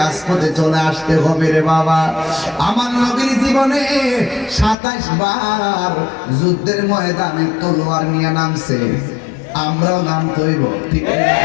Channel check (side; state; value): right; drops out; at 4.8 s